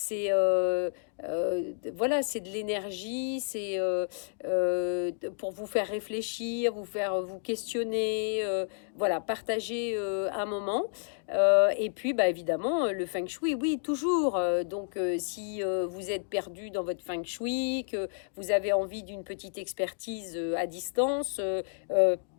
voilà, c'est de l'énergie. C'est pour vous faire réfléchir, vous faire vous questionner. Voilà, partager un moment. Et puis, bah, évidemment, le feng shui, oui, toujours. Donc, si vous êtes perdu dans votre feng shui, que vous avez envie d'une petite expertise à distance,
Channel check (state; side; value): silent; right; digital silence